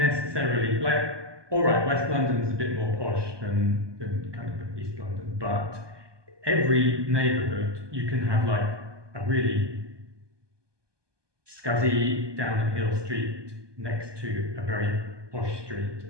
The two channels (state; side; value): late; left; 1.2 ms